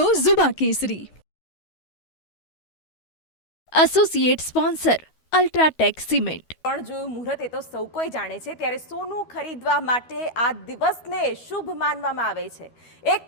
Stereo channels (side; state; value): right; late; 12 ms